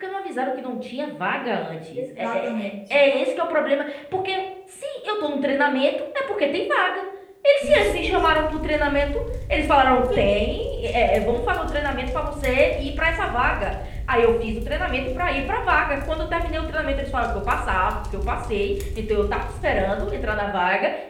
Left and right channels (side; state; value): both; identical; correlation 1.00